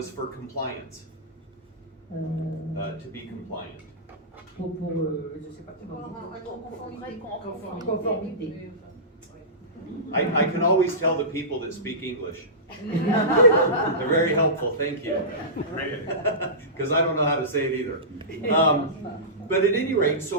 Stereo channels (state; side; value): normal; both; correlation -0.20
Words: for compliance, to be compliant. Je sais pas conformité. I can always tell the people that speak English. They're very helpful, thank you. Because I don't know how to say it either. But at any rate, so